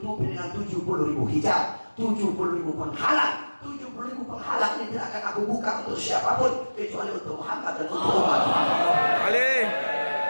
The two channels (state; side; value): inverted; both; correlation -1.00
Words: dengan 70.000 hijab, 70.000 penghalang. 70.000 penghalang ini tidak akan aku buka untuk siapapun kecuali untuk Muhammad dan untuk umat Muhammad.